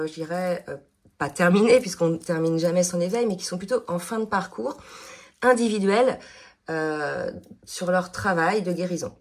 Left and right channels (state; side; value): identical; both; correlation 1.00